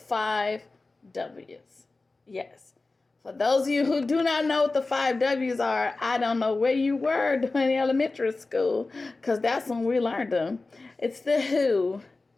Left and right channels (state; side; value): quieter; right; 3.5 dB